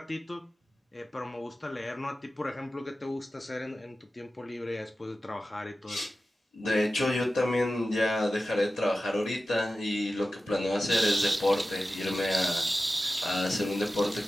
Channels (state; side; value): normal; both; correlation 0.94